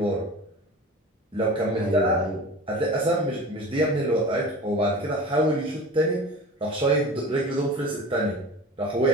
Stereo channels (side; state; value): both; normal; correlation 0.36